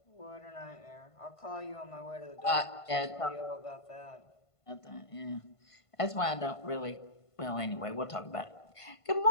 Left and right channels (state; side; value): late; right; 1.5 ms